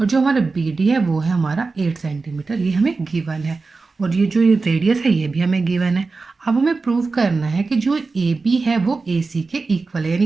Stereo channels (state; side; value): quieter; left; 4.0 dB